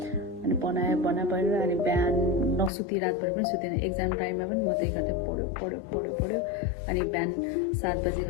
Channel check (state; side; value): drops out; right; at 2.7 s